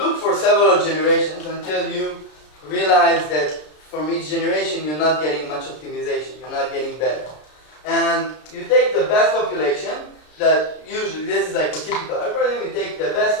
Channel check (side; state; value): right; late; 33 ms